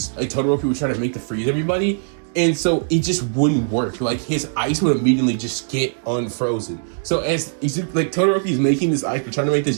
Todoroki would try to make to freeze everybody. And so it just wouldn't work. Like his ice would immediately just get unfrozen. So as like Todoroki is making this ice, trying to make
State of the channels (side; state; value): left; silent; digital silence